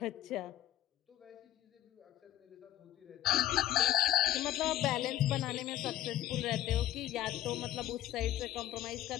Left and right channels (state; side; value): quieter; right; 13.2 dB